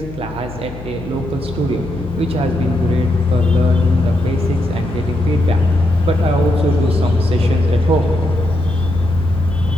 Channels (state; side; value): noise; left; hum, 14 dB below the sound